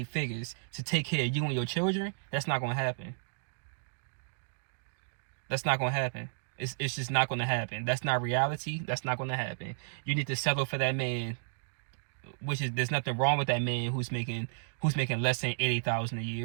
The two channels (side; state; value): left; silent; digital silence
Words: figures to take care of you and your children. That's not gonna happen. That's not gonna happen. It's just not gonna happen. That's not reality. That's not gonna happen. You need to settle for that man. There's nothing wrong with that man who's making less than $80,000 a